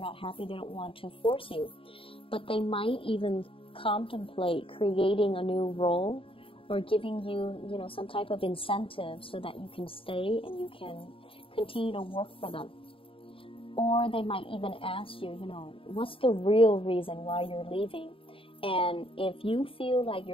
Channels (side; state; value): right; late; 0.26 ms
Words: happy, they don't want to force you. But they might even contemplate creating a new role or giving you, some type of incentive so that you can stay and you can continue to work for them. Or they might even ask you, what's the real reason why you're leaving? And if you feel like